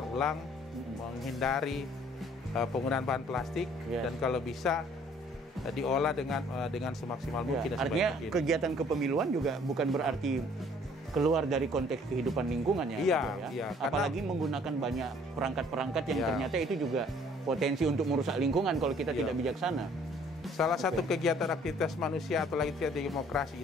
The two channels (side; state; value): both; normal; correlation 0.58